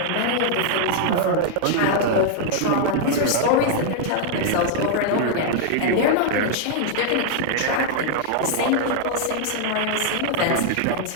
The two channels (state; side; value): different; both; correlation -0.01